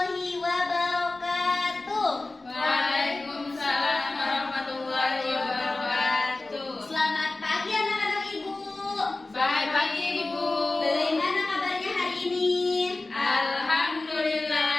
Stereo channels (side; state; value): right; quieter; 3.1 dB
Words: wabarakatuh. Waalaikumsalam warahmatullahi wabarakatuh. Selamat pagi anak-anak ibu. Selamat pagi ibu. Bagaimana kabarnya hari ini?